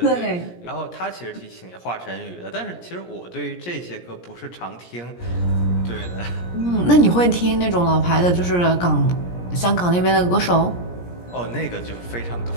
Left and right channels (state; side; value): late; right; 17 ms